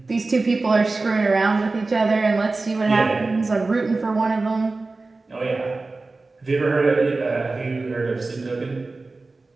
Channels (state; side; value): quieter; left; 3.5 dB